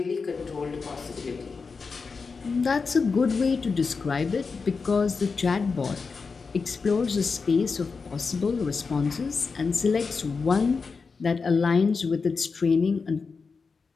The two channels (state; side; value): quieter; right; 4.8 dB